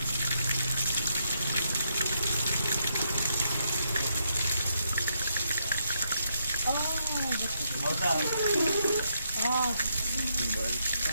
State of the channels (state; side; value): inverted; both; correlation -0.78